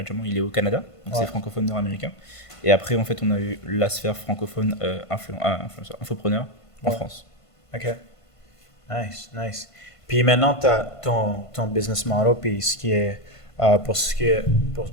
il est au Canada, donc Ouais. c'est francophone nord-américain. Et après, en fait, on a eu la sphère francophone infopreneur en Ouais. France. OK. Nice, nice. Puis maintenant, tu as ton business model, puis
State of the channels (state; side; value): late; right; 1.5 ms